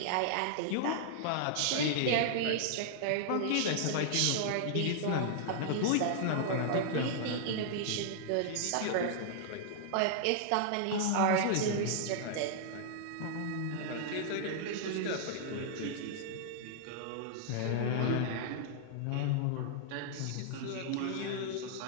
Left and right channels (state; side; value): different; both; correlation -0.01